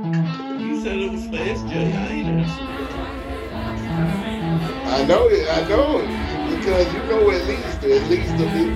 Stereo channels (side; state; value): both; identical; correlation 1.00